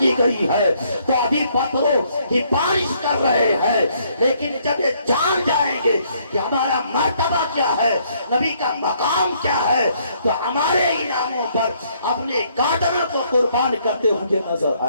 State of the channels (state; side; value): inverted; both; correlation -0.68